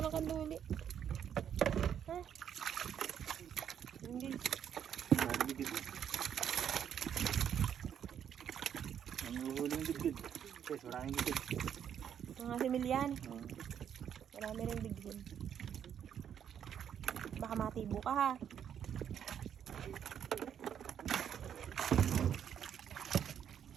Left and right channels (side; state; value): left; quieter; 8.9 dB